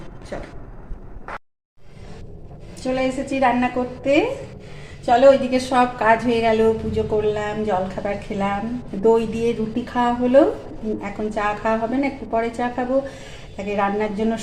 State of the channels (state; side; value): identical; both; correlation 1.00